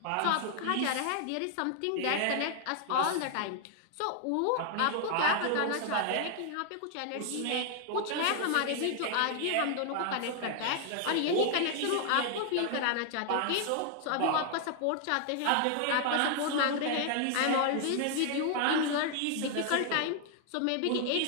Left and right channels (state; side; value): different; both; correlation 0.00